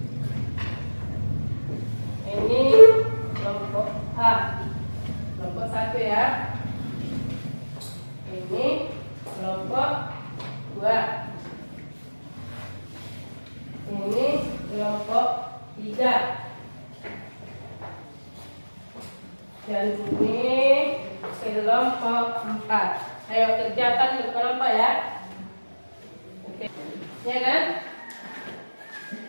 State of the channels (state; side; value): inverted; both; correlation -1.00